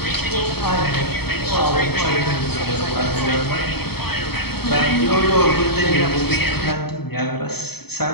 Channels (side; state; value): right; late; 0.97 ms